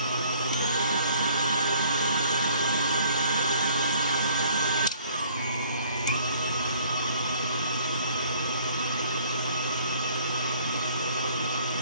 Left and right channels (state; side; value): inverted; both; correlation -0.58